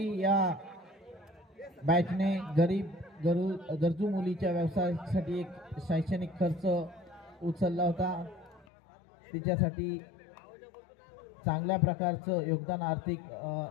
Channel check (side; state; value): right; drops out; at 8.7 s